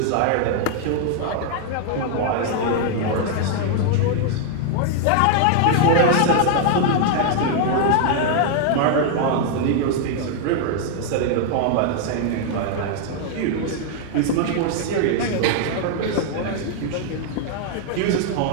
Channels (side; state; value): both; different; correlation 0.00